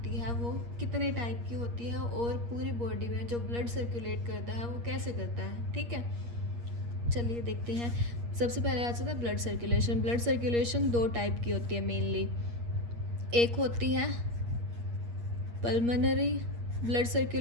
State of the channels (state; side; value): late; left; 8.5 ms